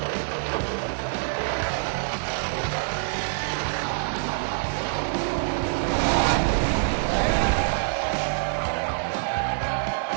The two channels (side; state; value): left; silent; digital silence